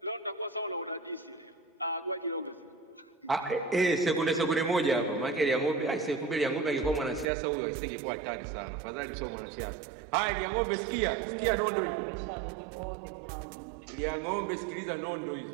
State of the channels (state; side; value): drops out; left; at 7.2 s